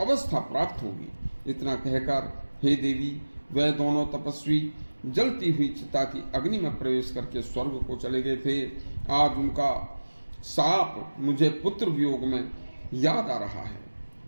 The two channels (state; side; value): inverted; both; correlation -1.00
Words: प्राप्त होगी। इतना कहकर हे देवी, वह दोनों तपस्वी जलती हुई चिता की अग्नि में प्रवेश करके स्वर्ग को चले गए थे। आज उनका साप मुझे पुत्र वियोग में याद आ रहा है।